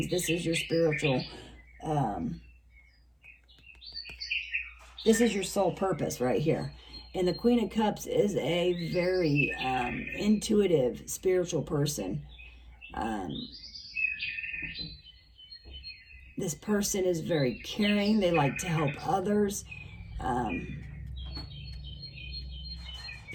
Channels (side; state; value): both; identical; correlation 1.00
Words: this is your spiritual, this is your soul purpose right here. And the Queen of Cups is a very intuitive, spiritual person. This person is very caring. They like to help others.